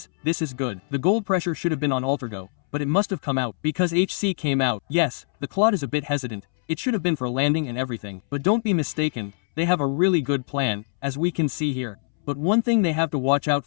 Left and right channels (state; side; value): silent; right; 63 dB below the other